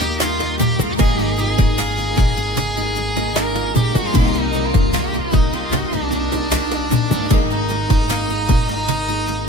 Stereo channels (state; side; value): normal; both; correlation 0.49